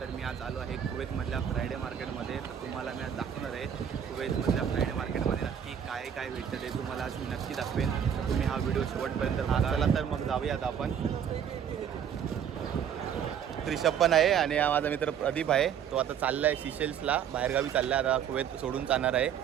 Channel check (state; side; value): quieter; left; 8.6 dB